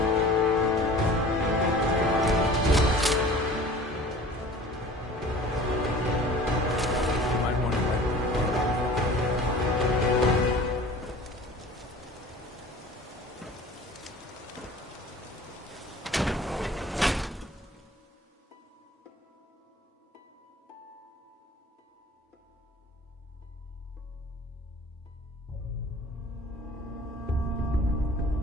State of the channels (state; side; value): normal; both; correlation 0.44